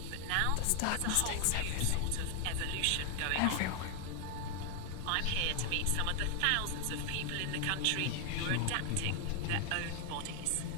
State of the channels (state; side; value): different; both; correlation 0.00